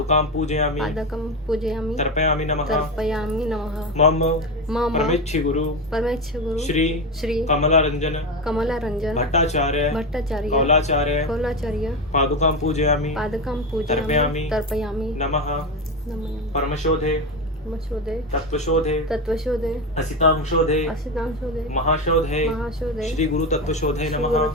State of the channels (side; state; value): both; normal; correlation 0.16